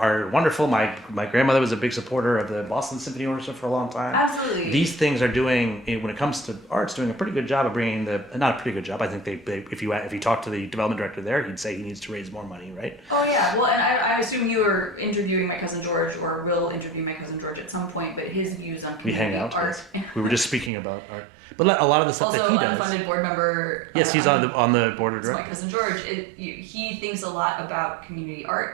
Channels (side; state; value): left; drops out; at 20.7 s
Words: wonderful. My grandmother was a big supporter of the Boston Symphony Orchestra for a long time. Absolutely. These things are doing, when it comes to arts, doing a pretty good job of bringing not a pretty good job. I think if you talk to the development director there, he'd say he needs to raise more money, right? Oh yeah, well, and I assume you are interviewing my cousin George, or will interview my cousin George at some point, but his views on We hang community out. art. Yes. We were just speaking about art, but a lot of the stuff Also, that he does. unfunded board member. Yes, he's on the board of So my directors. cousin George, he thinks a lot about community